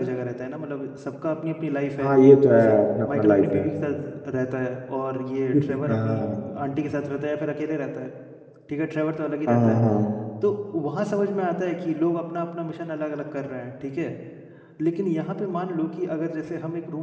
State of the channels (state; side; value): identical; both; correlation 1.00